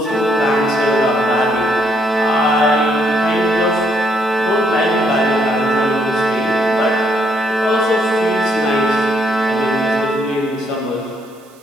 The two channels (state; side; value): noise; right; hiss, 29 dB below the sound